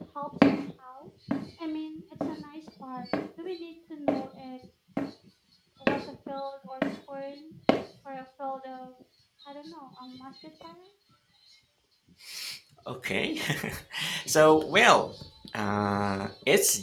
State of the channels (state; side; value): identical; both; correlation 1.00